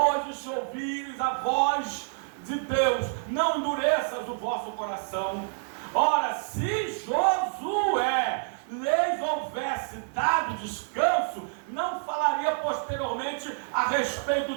se ouvires a voz de Deus, não endureças o vosso coração. Ora, se Josué lhes houvesse dado descanso, não falaria posteriormente a respeito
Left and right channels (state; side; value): silent; left; digital silence